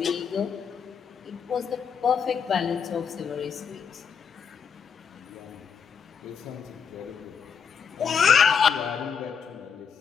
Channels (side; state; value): right; quieter; 6.7 dB